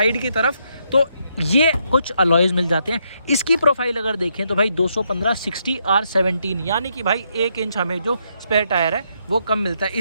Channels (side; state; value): both; inverted; correlation -0.77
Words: की तरफ तो ये कुछ अलॉयज मिल जाते हैं। इसकी प्रोफाइल अगर देखें तो भाई 215/60 R17, यानी कि भाई 1 इंच हमें जो स्पेयर टायर है वो कम मिलता है।